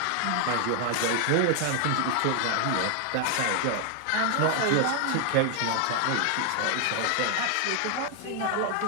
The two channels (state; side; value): different; both; correlation 0.00